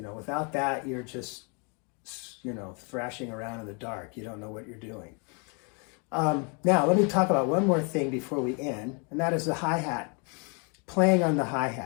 know, without that, you're just, you know, thrashing around in the dark. You don't know what you're doing. Now, let me talk about one more thing before we end, and that is the hi-hat, playing on the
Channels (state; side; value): quieter; right; 35.3 dB